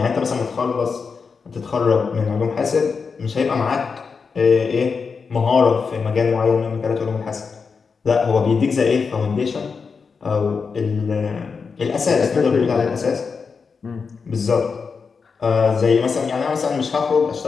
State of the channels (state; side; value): quieter; right; 5.3 dB